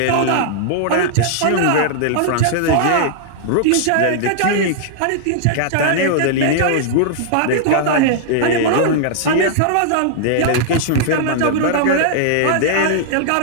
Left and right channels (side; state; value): both; different; correlation -0.01